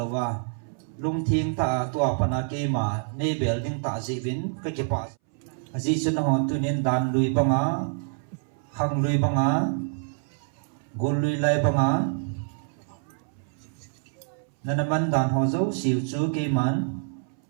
wa lung thiên ta tua pana cây mà này bể ding ta dị vin cái pa dị chân ho tu nên đàn lùi banga hang lùi banga gol lùi lai banga na naman dan ho zo siu chu ke man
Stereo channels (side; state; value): left; silent; 60 dB below the other